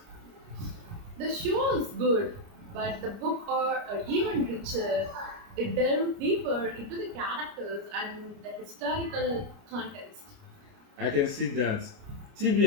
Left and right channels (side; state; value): left; late; 29 ms